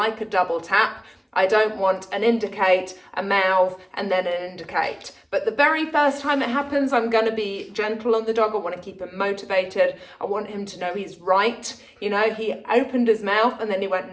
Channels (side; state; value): both; identical; correlation 1.00